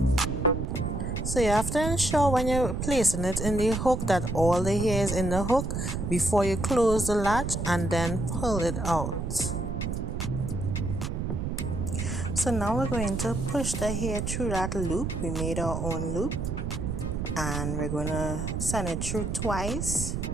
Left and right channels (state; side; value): noise; right; rumble, 3 dB below the sound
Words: So you have to ensure when you're placing it in the hook that all the hair is in the hook before you close the latch and then pull it out. So now we're going to push the hair through that loop. We made our own loop, and we're going to send it through twice